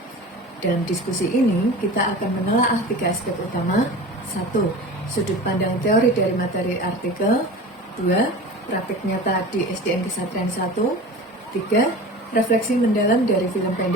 Dalam diskusi ini, kita akan menelaah 3 aspek utama. 1. Sudut pandang teori dari materi artikel. 2. Praktik nyata di SDN Kesatrian 1. 3. Refleksi mendalam dari film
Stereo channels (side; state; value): both; normal; correlation 0.35